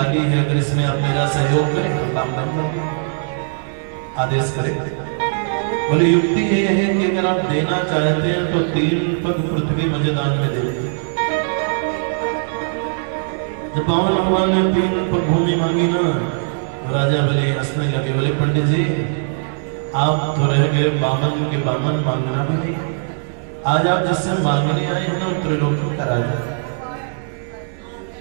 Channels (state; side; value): silent; left; digital silence